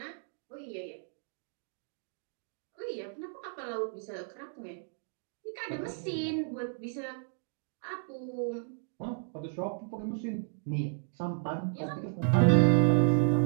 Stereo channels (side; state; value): left; silent; digital silence